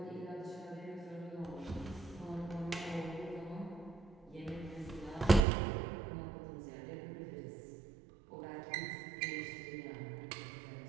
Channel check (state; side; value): drops out; left; at 5.4 s